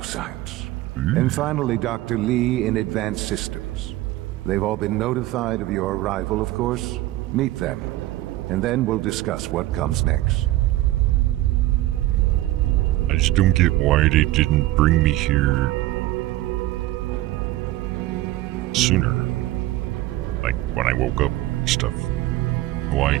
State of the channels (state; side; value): quieter; left; 16.4 dB